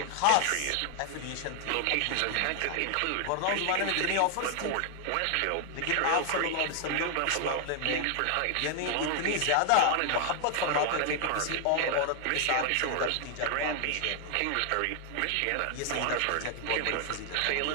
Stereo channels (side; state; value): both; different; correlation 0.00